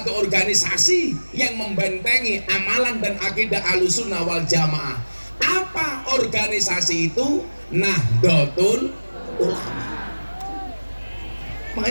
organisasi yang membentengi amalan dan akidah Ahlus Sunnah wal Jamaah. Apa organisasi itu? Nahdlatul Ulama.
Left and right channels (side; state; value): both; inverted; correlation -1.00